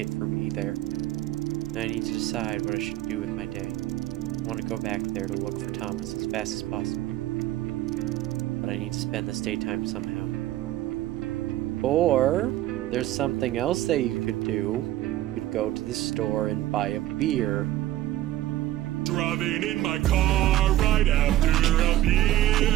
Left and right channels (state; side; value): quieter; left; 14.4 dB